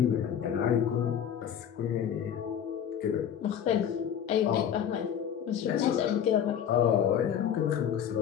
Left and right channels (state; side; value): quieter; right; 8.9 dB